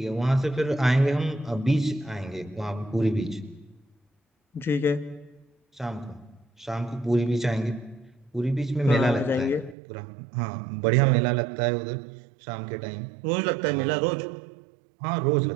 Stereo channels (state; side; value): drops out; left; at 9.8 s